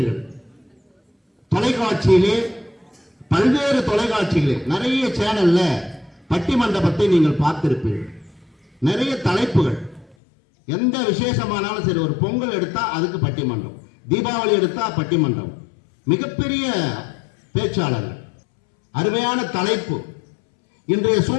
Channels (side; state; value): right; drops out; at 10.2 s